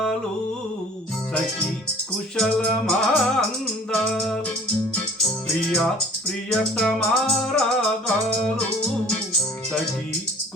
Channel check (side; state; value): both; normal; correlation 0.50